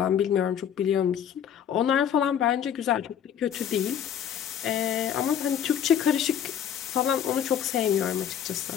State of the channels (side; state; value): right; quieter; 9.1 dB